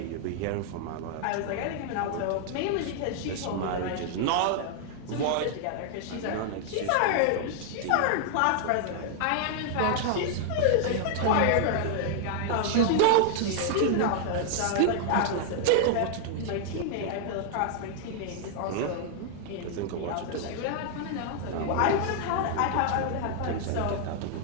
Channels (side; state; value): both; different; correlation 0.00